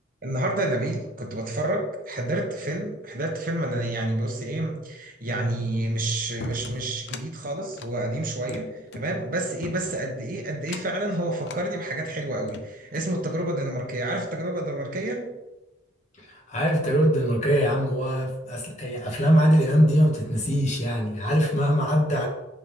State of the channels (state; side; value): normal; both; correlation 0.65